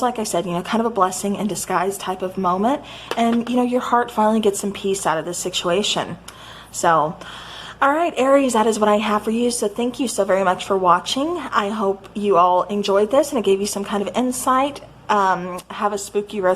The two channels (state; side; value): identical; both; correlation 1.00